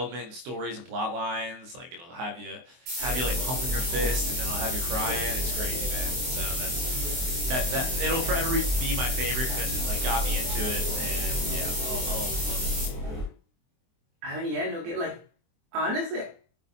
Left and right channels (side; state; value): left; late; 23 ms